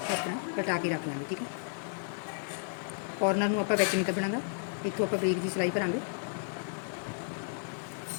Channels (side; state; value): right; silent; digital silence